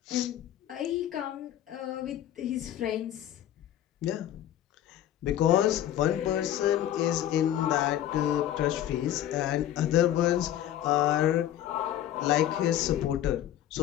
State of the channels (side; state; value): right; quieter; 12.0 dB